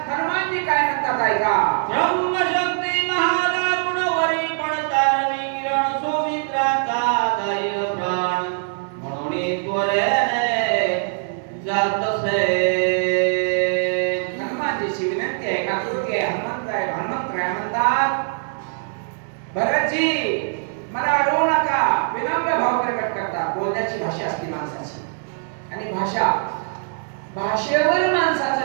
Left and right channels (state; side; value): silent; left; 59 dB below the other